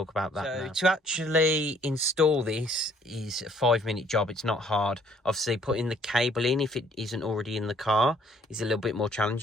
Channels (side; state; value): both; normal; correlation 0.62